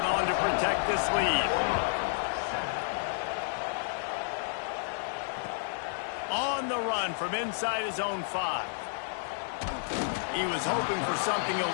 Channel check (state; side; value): silent; right; 57 dB below the other